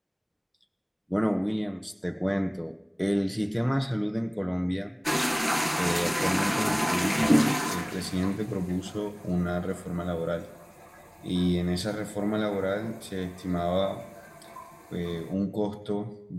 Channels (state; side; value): identical; both; correlation 1.00